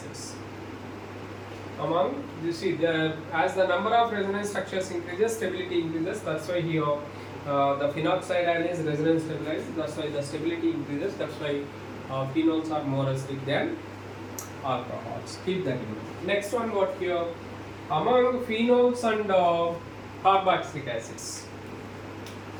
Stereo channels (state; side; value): identical; both; correlation 1.00